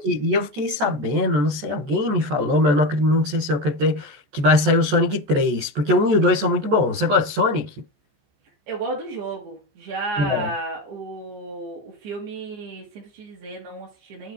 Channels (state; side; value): late; left; 14 ms